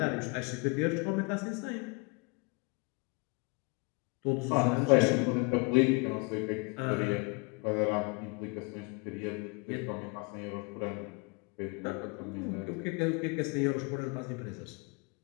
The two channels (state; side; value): quieter; right; 32.4 dB